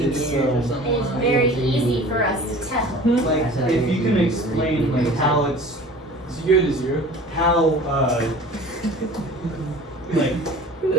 It's, years or something. It is like very easy for us to tell. like if you can explain like how it's So you go to 0. how like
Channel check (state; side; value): normal; both; correlation 0.43